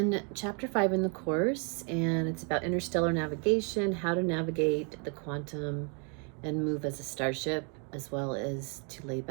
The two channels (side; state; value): left; quieter; 37.8 dB